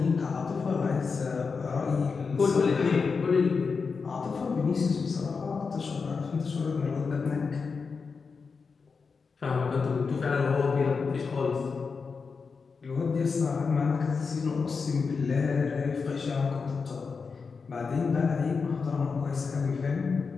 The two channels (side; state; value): right; quieter; 5.1 dB